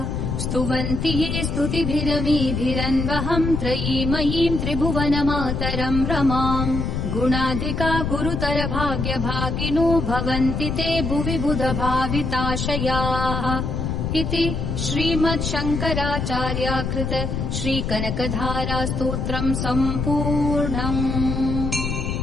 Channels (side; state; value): left; noise; rumble, 2 dB below the sound